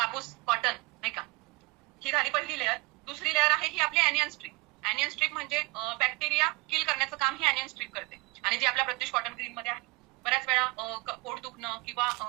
कॉटन नाही का. ही झाली पहिली लेअर. दुसरी लेअर आहे ही आपली ॲनियन स्ट्रीप. ॲनियन स्ट्रीप म्हणजे बॅक्टेरिया किल करण्याचं काम ही ॲनियन स्ट्रीप करते. आणि जी आपल्या प्रत्युष कॉटन ग्रीन मध्ये आहे. बऱ्याच वेळा पोट दुखणं किंवा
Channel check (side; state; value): left; quieter; 25.0 dB